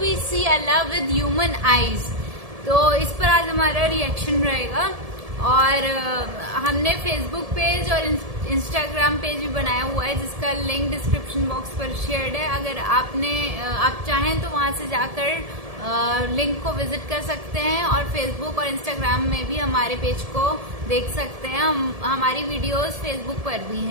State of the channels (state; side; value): late; left; 1.7 ms